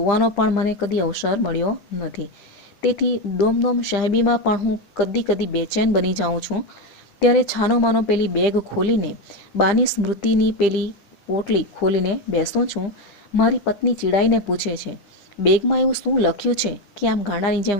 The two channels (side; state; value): right; late; 9.9 ms